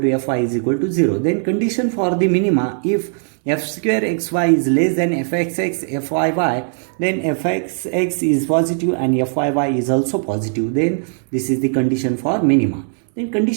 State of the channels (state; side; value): silent; left; digital silence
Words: to fy is equal to 0. Then condition for the minima, if f square xy is less than fxx fyy, then fxx is positive and fyy is also positive. Then this is the condition for minima. Then